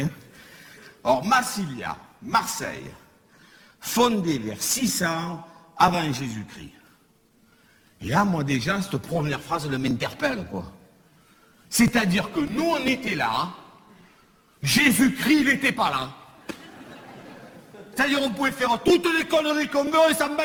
Or Massilia, Marseille, fondée vers 600 avant Jésus-Christ. Et là, moi déjà, cette première phrase elle m'interpelle, quoi. C'est-à-dire que nous, on était là, Jésus-Christ, il n'était pas là. C'est-à-dire, on pouvait faire toutes les conneries qu'on veut, et ça me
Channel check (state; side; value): identical; both; correlation 1.00